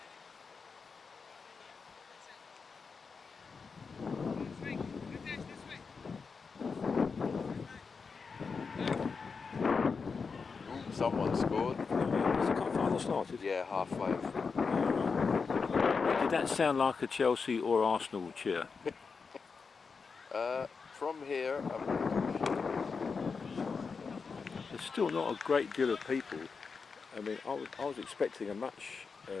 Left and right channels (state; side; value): quieter; right; 5.1 dB